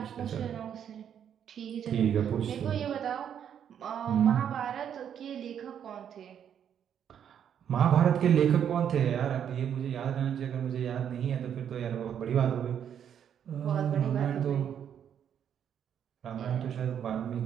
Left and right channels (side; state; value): left; quieter; 8.9 dB